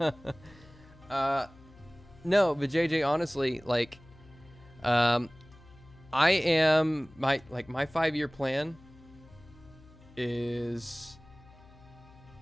but JJ, honestly, like, I am my 5-year plan is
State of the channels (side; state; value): left; noise; hum, 23 dB below the sound